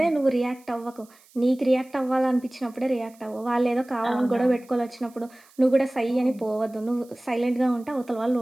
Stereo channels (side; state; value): right; noise; hiss, 28 dB below the sound